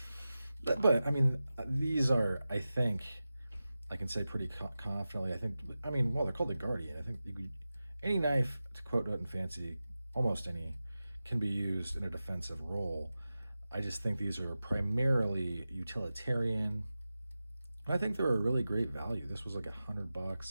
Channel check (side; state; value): both; inverted; correlation -0.94